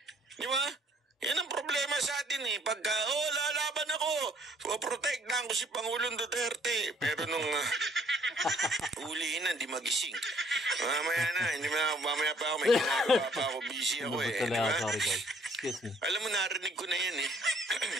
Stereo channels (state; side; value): normal; both; correlation 0.61